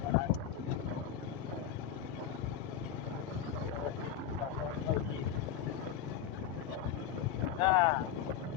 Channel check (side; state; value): right; quieter; 9.3 dB